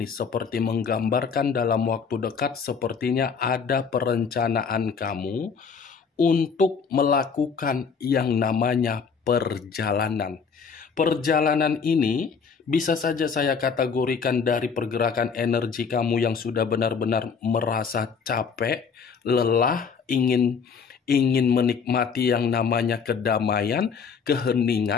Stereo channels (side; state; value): right; quieter; 5.9 dB